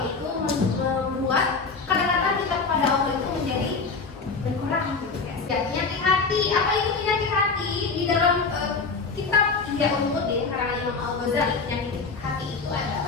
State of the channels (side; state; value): right; quieter; 4.5 dB